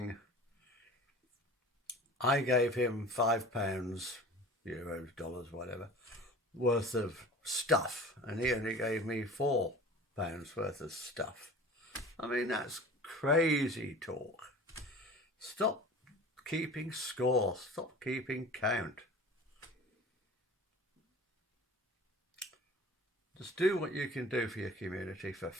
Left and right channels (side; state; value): both; normal; correlation 0.40